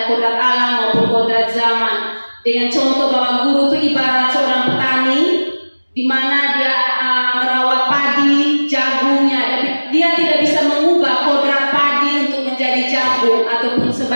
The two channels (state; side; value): inverted; both; correlation -1.00